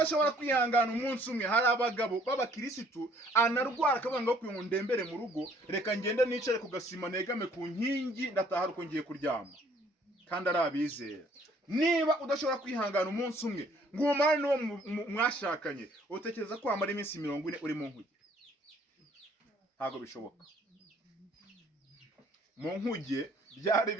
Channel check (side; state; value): both; normal; correlation 0.60